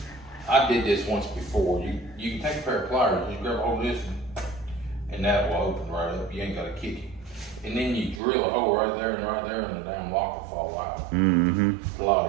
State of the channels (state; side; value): drops out; left; at 8.2 s